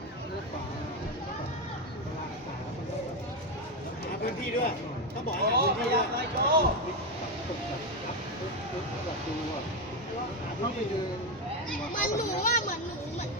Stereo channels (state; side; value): normal; both; correlation 0.10